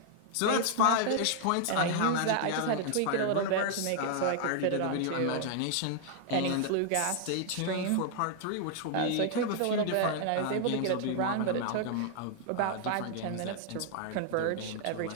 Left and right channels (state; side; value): different; both; correlation 0.00